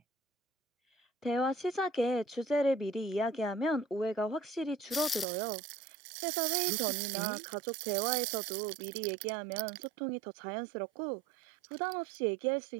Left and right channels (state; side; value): drops out; left; at 5.2 s